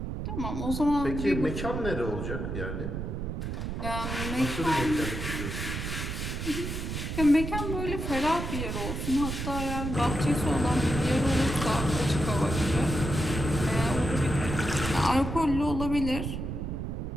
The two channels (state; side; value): noise; right; rumble, 4 dB below the sound